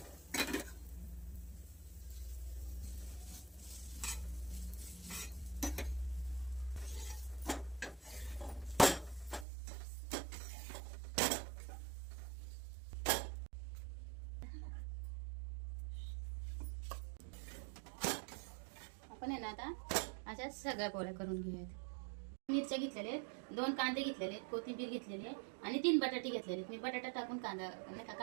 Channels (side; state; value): left; drops out; at 9.5 s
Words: आपण आहे ना आता अशा सगळ्या पोळ्या करून घेऊयात. मिरच्या घेतलेल्या आहेत, 2 कांदे घेतलेले आहेत, कोथिंबीर घेतलेली आहे आणि 3 बटाटे घेतलेले आहेत. मी बटाटा टाकून कांदा नाही का